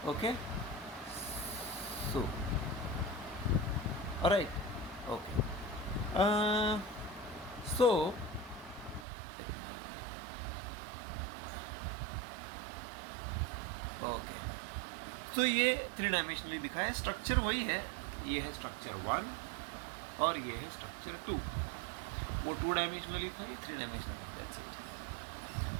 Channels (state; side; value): drops out; left; at 9.1 s